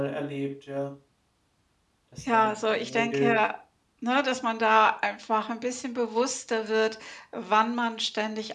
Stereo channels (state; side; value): identical; both; correlation 1.00